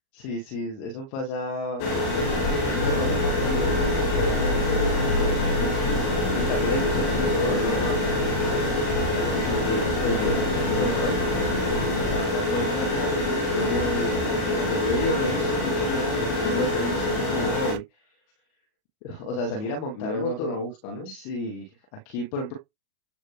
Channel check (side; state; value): right; late; 37 ms